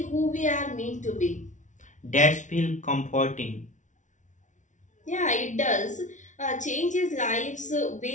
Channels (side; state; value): right; late; 0.36 ms